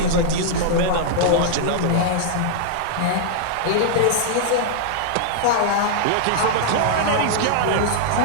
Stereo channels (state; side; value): different; both; correlation -0.01